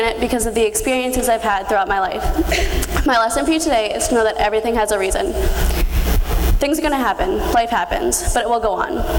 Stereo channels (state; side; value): identical; both; correlation 1.00